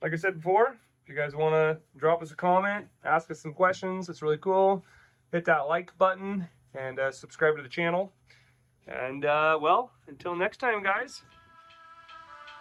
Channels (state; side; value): identical; both; correlation 1.00